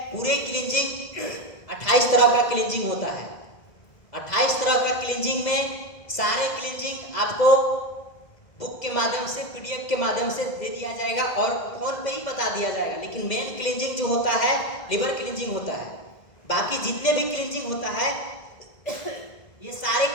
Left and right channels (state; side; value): late; right; 2.0 ms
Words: पूरे क्लींजिंग 28 तरह का क्लींजिंग होता है। 28 तरह का क्लींजिंग में सारे क्लींजिंग आपको बुक के माध्यम से, PDF के माध्यम से दे दिया जाएगा और फोन पे ही बता दिया जाएगा। लेकिन मेन क्लींजिंग जो होता है लिवर क्लींजिंग होता है। बाकी जितने भी क्लींजिंग होता है ये सारे